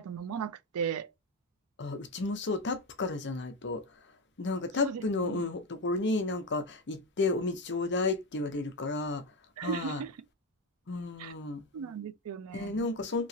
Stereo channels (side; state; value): both; normal; correlation 0.14